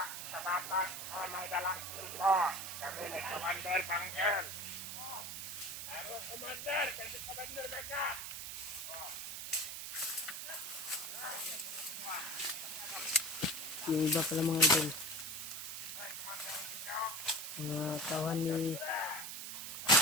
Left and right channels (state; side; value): noise; right; hiss, 6 dB below the sound